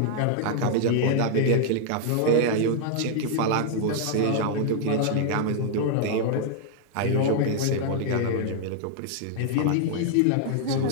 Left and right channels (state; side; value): different; both; correlation 0.00